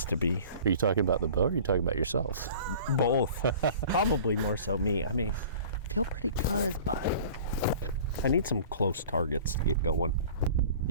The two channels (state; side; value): inverted; both; correlation -0.44